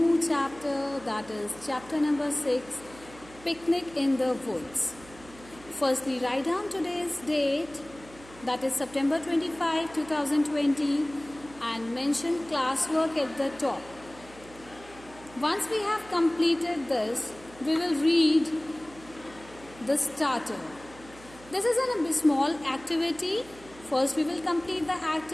chapter, that is chapter number 6, Picnic in the Woods. Firstly, write down today's date, that is September 25, 2020, and mention classwork at the top. Once we have completed this, we will read the starter. This is a small activity. First we will complete the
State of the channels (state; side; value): noise; right; hum, 21 dB below the sound